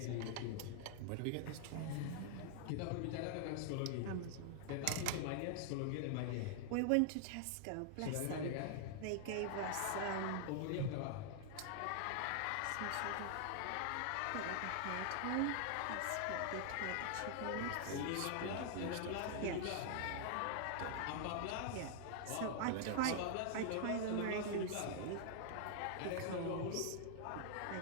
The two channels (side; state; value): both; different; correlation 0.00